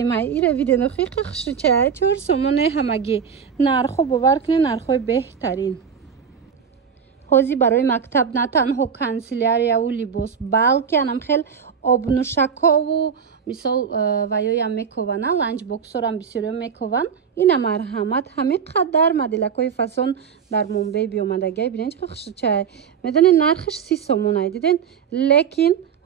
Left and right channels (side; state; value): left; quieter; 7.0 dB